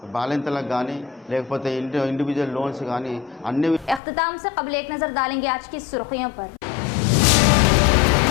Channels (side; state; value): right; drops out; at 4.0 s